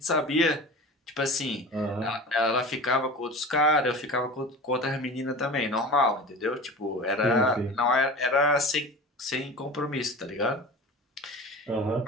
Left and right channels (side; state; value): both; normal; correlation 0.34